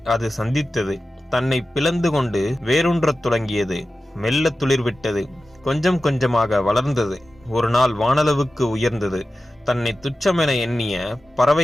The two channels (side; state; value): both; normal; correlation 0.94